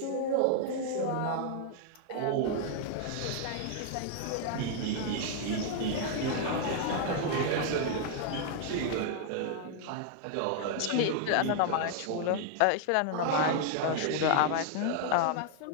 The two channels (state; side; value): different; both; correlation 0.00